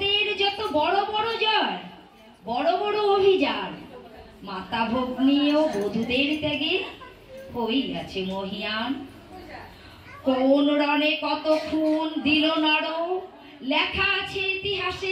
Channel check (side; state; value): both; identical; correlation 1.00